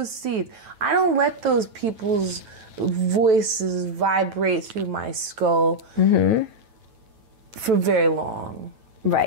seeds. I don't let those people's voices vibrate through my skull for very long.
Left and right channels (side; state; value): left; late; 9.1 ms